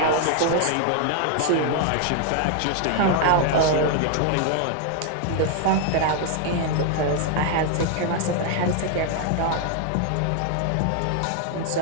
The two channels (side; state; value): both; different; correlation 0.00